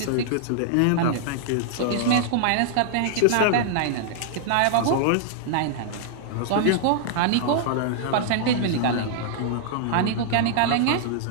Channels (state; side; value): different; both; correlation -0.01